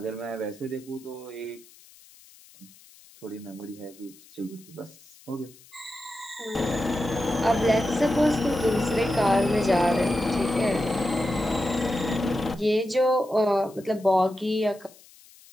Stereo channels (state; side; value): noise; left; hiss, 24 dB below the sound